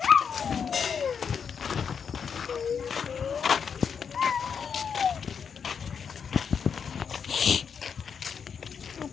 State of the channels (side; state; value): right; quieter; 6.7 dB